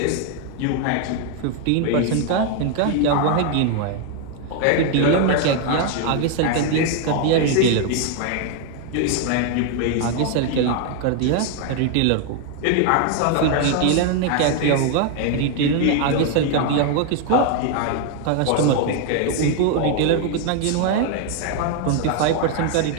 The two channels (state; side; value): different; both; correlation 0.00